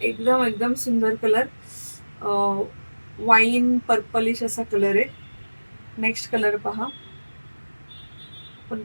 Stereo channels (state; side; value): inverted; both; correlation -1.00